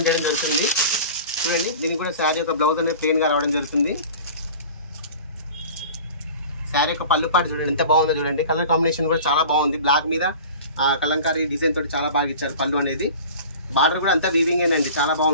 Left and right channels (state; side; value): inverted; both; correlation -0.40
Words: చేయడం జరుగుతుంది. చూడండి, దీనికి కూడా శారీ యొక్క బ్లౌజ్ అనేది ప్లెయిన్గా రావడం జరుగుతుంది. శారీ యొక్క పళ్ళు పాటు చూడండి ఎంత బాగుందో చూడండి. కలర్ కాంబినేషన్ కూడా చాలా బాగుంది, బ్లాక్ మీద కలంకారీ డిజైన్ తోటి చాలా బాగా ఇచ్చారు పళ్ళు అనేది. బార్డర్ కూడా అంతా వీవింగ్ అండి, చాలా